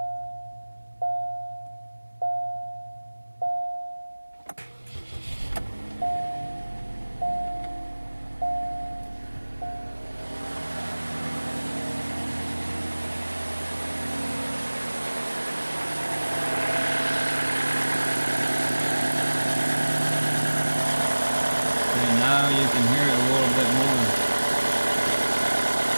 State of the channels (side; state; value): both; inverted; correlation -1.00